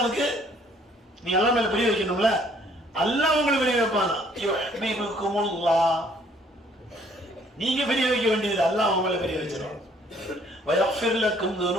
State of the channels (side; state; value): both; normal; correlation 0.62